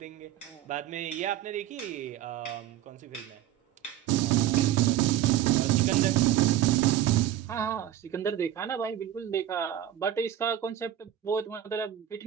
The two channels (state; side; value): quieter; left; 11.8 dB